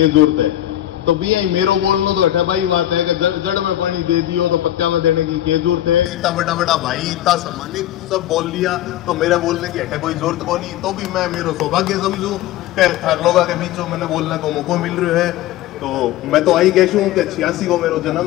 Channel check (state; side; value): quieter; right; 13.3 dB